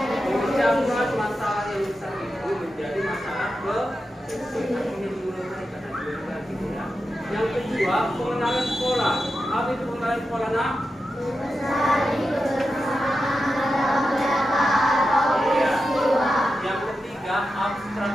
memecahkan masalah yang besar itu menjadi masalah kecil. Yang kedua, pengenalan pola. Apa itu pengenalan pola nak? Iya. Yang ketiga,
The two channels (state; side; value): normal; both; correlation 0.90